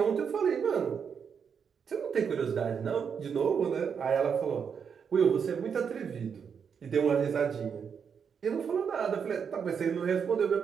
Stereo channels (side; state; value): left; quieter; 6.8 dB